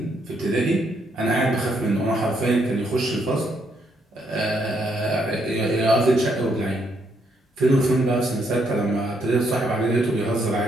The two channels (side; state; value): both; normal; correlation 0.74